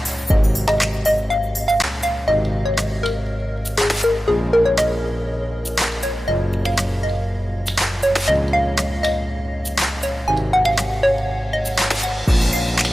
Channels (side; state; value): both; normal; correlation 0.95